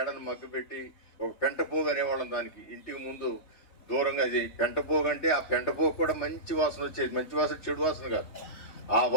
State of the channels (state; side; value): late; right; 3.7 ms